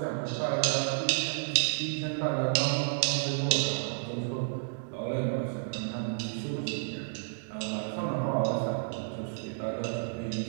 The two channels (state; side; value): silent; left; digital silence